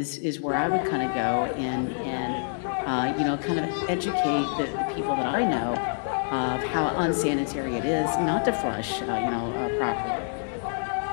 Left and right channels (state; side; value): silent; right; digital silence